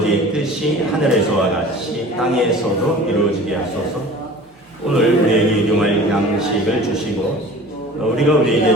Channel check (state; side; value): normal; both; correlation 0.41